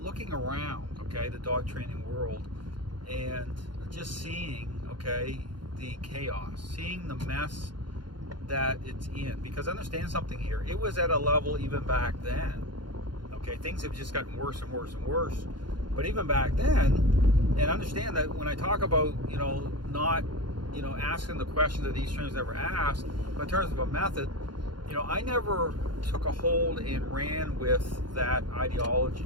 around, okay, the dog training world, and just seeing, okay, the chaos, seeing the mess that it's in. Because understand something here, it was at a level even back then, okay, things have just gotten worse and worse and worse. But even back then, and understand that when I talk about, not, asking the questions that these trainers never asked, but in terms of a method, I never took a hold and ran with that ideology,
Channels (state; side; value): late; left; 0.71 ms